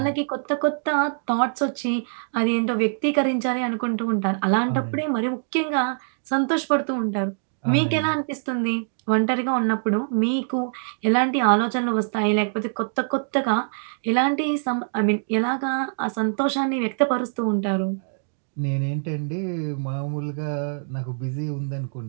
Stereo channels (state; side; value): silent; left; digital silence